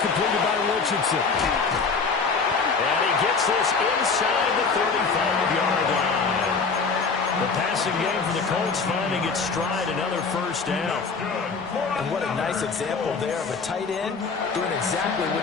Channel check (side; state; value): right; quieter; 4.8 dB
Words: completed by Richardson. And he gets this inside the 35-yard line. The passing game for the Colts finding its stride, another first down. And what a nice example there of a tight end doing exactly